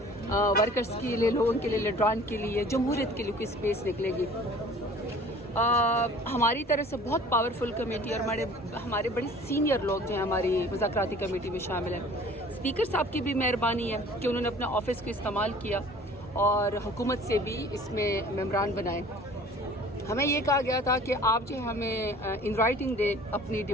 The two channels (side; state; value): both; normal; correlation 0.48